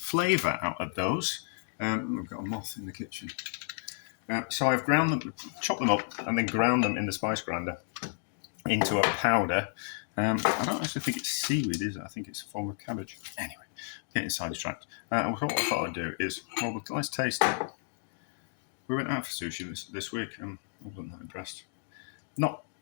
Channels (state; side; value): silent; right; digital silence